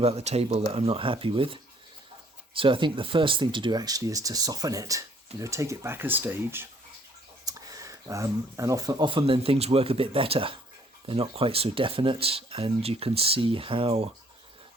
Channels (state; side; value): normal; both; correlation 0.62